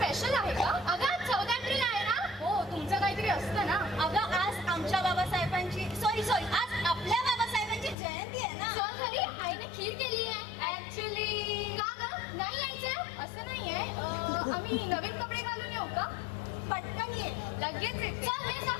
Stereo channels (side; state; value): right; drops out; at 8.0 s